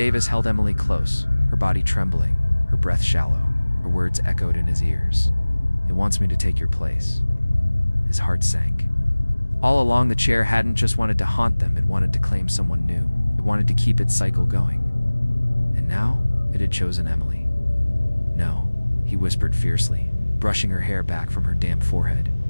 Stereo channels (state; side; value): inverted; both; correlation -1.00